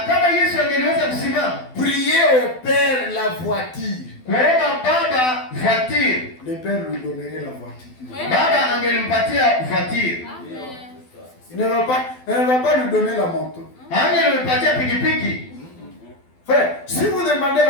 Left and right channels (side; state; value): right; late; 12 ms